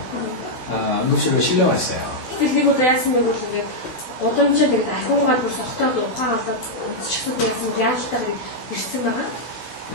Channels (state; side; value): late; right; 16 ms